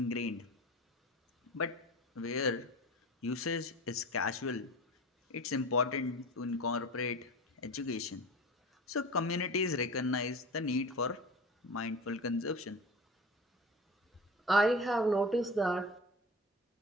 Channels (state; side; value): normal; both; correlation 0.33